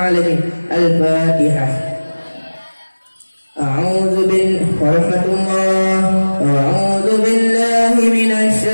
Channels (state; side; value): inverted; both; correlation -1.00